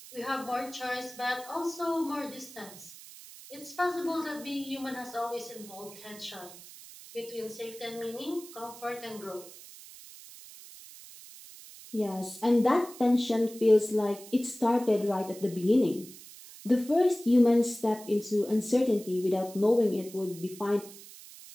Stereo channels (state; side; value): noise; right; hiss, 17 dB below the sound